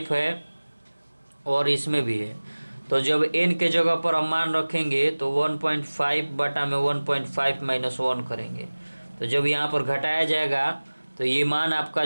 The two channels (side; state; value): both; inverted; correlation -1.00